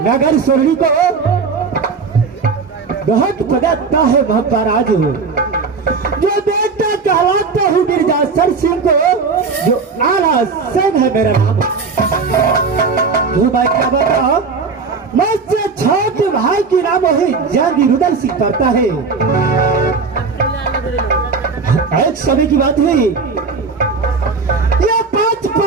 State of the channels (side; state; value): left; quieter; 4.8 dB